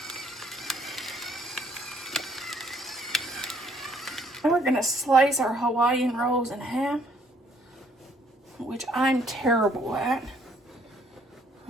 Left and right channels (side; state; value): both; normal; correlation 0.65